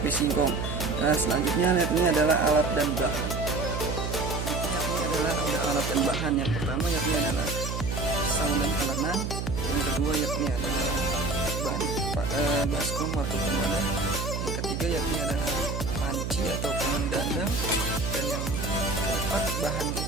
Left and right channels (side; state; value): right; noise; hum, 3 dB below the sound